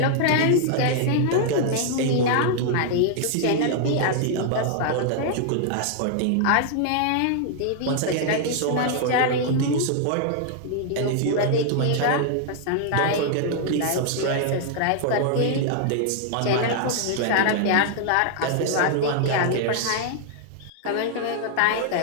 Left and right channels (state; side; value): different; both; correlation 0.00